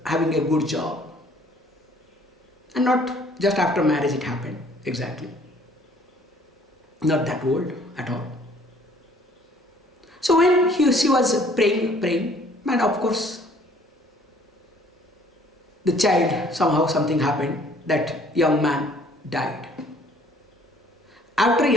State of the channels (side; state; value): both; normal; correlation 0.58